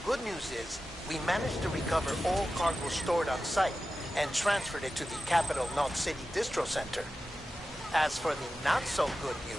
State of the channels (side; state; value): both; normal; correlation 0.93